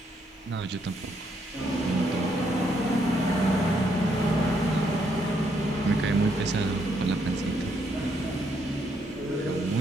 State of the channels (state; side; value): normal; both; correlation 0.74